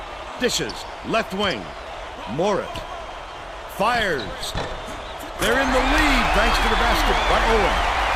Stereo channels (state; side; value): identical; both; correlation 1.00